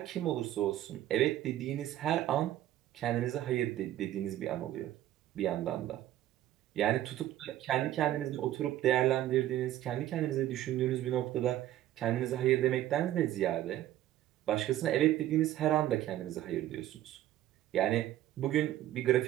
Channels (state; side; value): quieter; left; 13.3 dB